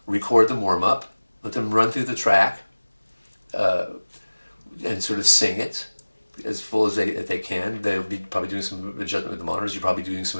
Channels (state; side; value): inverted; both; correlation -1.00